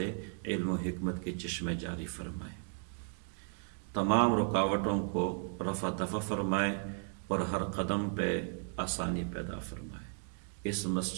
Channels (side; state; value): left; silent; 54 dB below the other